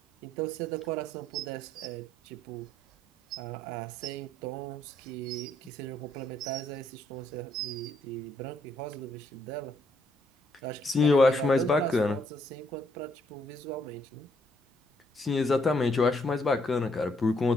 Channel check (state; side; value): normal; both; correlation 0.71